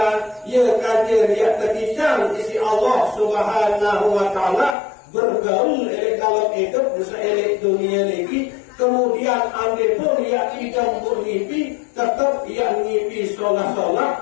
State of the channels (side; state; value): right; drops out; at 4.8 s